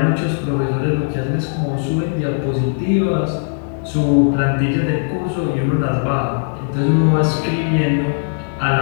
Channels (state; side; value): silent; right; digital silence